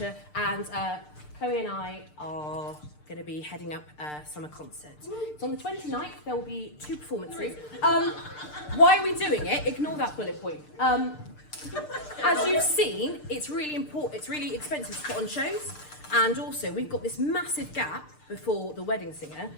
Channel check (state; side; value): late; right; 6.7 ms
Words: and Chloe and I are going to be heading up a summer concert. It's on the 29th. There will be 2 performances. Why are we doing it? Ignore that bullet point. As you've seen, it's really important. It's really expensive to put on shows, and also we've got this massive gap before the wedding singer.